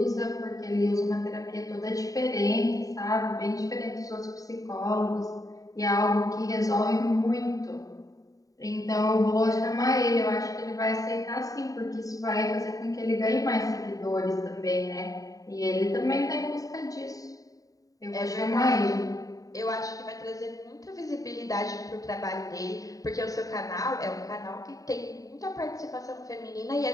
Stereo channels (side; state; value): right; late; 0.17 ms